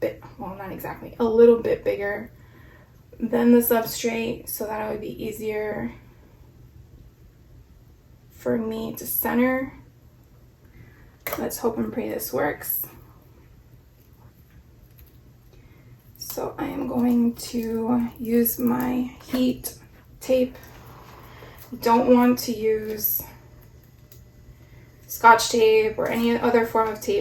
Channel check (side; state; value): both; identical; correlation 1.00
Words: bit, well, not exactly, a little bit bigger than the substrate so that it would be easier for me to center. Let's hope and pray this works. So I am going to use my heat tape. You don't want to use Scotch tape or any other form of